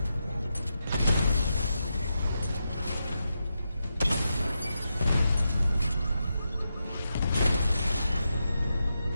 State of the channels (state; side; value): inverted; both; correlation -0.87